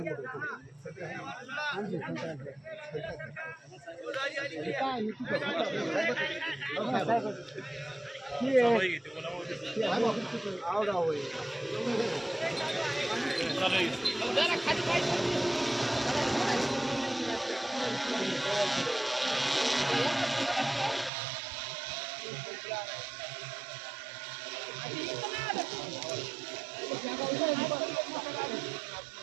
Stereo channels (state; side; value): drops out; left; at 21.1 s